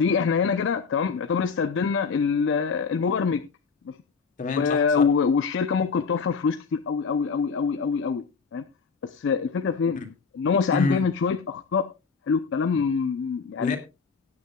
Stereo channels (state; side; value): quieter; right; 5.3 dB